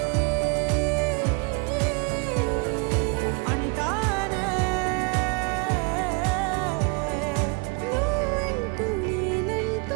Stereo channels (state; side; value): quieter; left; 31.8 dB